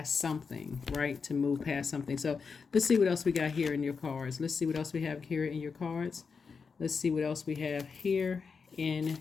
something, right? To move past something. So let's see what else we got here in your cards. Let's see what else we have here in your cards. Let's see what else we have here in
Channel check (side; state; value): right; quieter; 5.4 dB